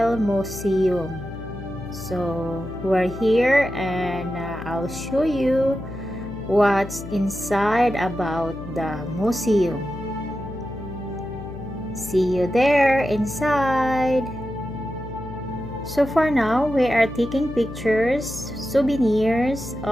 Museum. So, we're here and I'll show you what's inside about the museum. See you there inside. So for now, we are taking pictures, souvenirs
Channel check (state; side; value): noise; left; hum, 11 dB below the sound